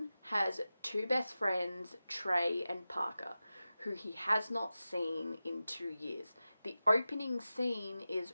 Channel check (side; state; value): both; inverted; correlation -0.94